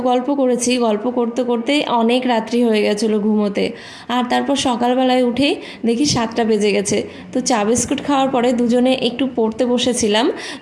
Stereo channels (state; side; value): identical; both; correlation 1.00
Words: গল্প করেছি, গল্প করতে করতেই অনেক রাত্রি হয়ে গেছিলো ঘুমোতে। আর তারপর সকালবেলায় উঠেই দেখি 7টা বেজে গেছে। তো চা বিস্কুট খাওয়ার পরে দুজনে একটু পড়তে বসেছিলাম।